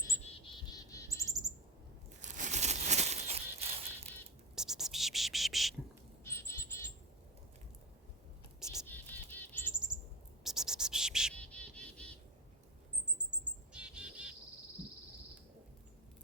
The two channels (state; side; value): normal; both; correlation 0.21